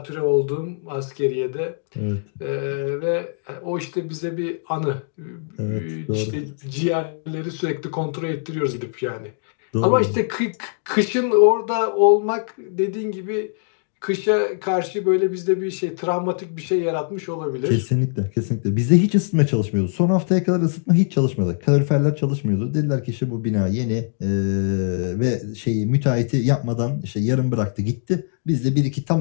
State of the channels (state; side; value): silent; right; digital silence